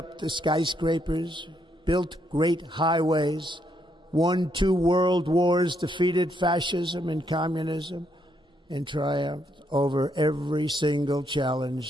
the skyscrapers, built great highways, won 2 world wars, defeated fascism and communism, and triumphed over every single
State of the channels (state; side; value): normal; both; correlation 0.75